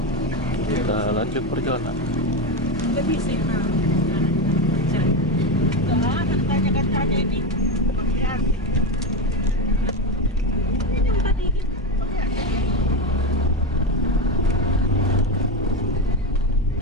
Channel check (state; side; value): normal; both; correlation 0.14